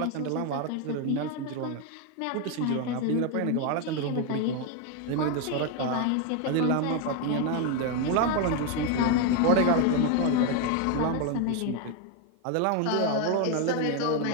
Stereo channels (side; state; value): both; different; correlation 0.01